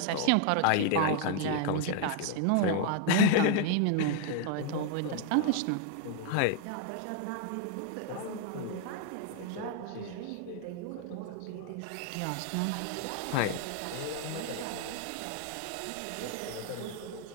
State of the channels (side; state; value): both; different; correlation 0.00